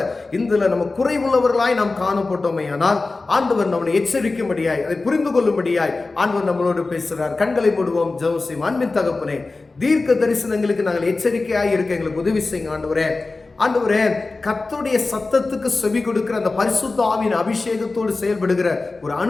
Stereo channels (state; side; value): quieter; right; 3.6 dB